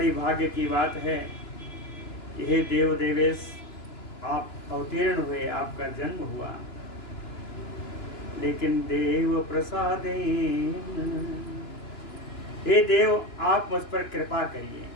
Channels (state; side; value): late; right; 2.9 ms